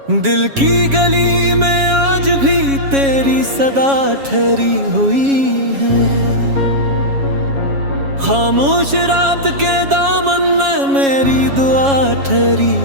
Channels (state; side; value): late; left; 7.3 ms